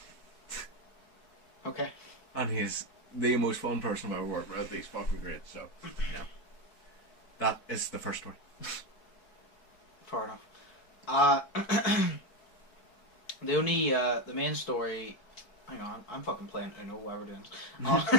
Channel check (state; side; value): late; right; 4.6 ms